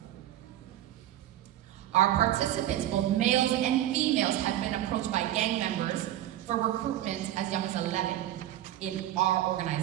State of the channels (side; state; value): left; quieter; 13.1 dB